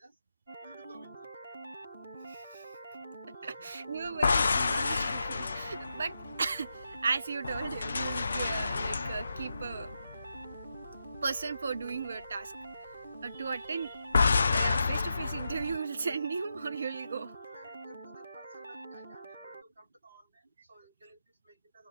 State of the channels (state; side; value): inverted; both; correlation -0.86